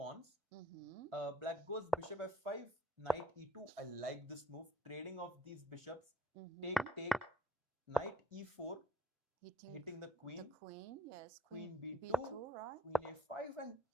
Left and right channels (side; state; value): both; normal; correlation 0.62